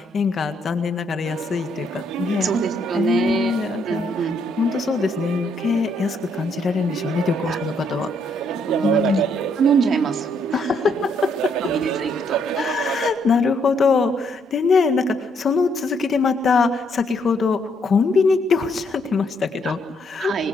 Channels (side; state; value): both; normal; correlation 0.72